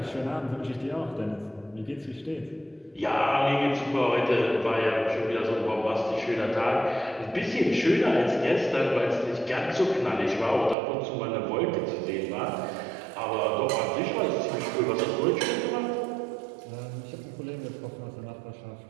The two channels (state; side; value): drops out; left; at 10.8 s